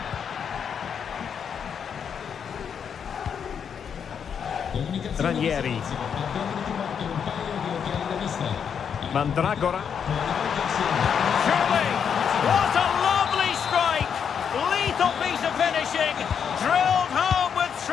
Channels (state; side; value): quieter; right; 7.4 dB